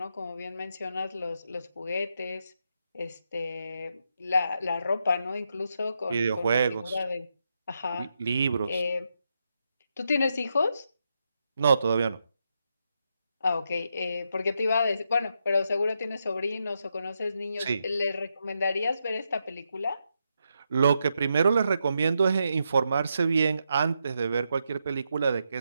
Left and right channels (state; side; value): inverted; both; correlation -0.83